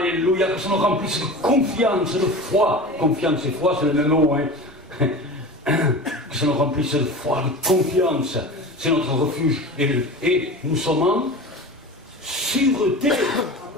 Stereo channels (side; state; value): both; normal; correlation 0.33